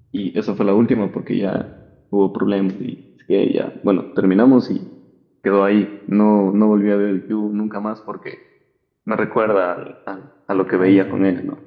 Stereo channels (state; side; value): identical; both; correlation 1.00